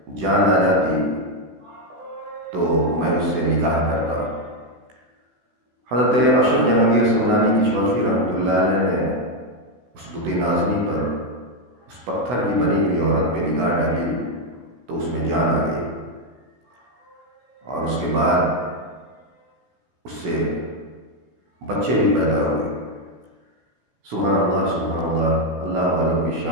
جان آ جاتی تو میں اس سے نکاح کرتا۔ حضرت اشرف جہانگیر سمنانی کچھوچوی رحمۃ اللہ علیہ نے اس بت نازنی پر، اس پتھر کی بنی ہوئی عورت پہ نگاہ ڈالی تو اس میں جان آ گئی، اور اس کے بعد اس سے بچے بھی پیدا ہوئے۔ سبحان اللہ، سبحان اللہ، اللہ والوں کی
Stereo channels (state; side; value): late; left; 16 ms